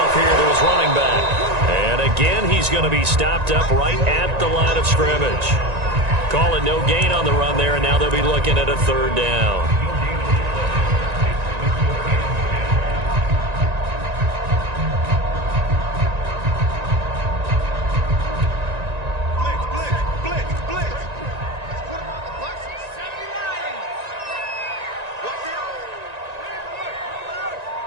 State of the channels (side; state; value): left; late; 1.9 ms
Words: here to his running back. And again, he's he's going to be stopped up right at the line of scrimmage. Call it no gain on the run there, and now they'll be looking at a third down.